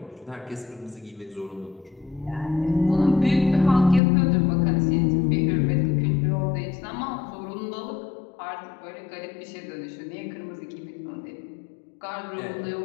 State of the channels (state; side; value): drops out; right; at 4.0 s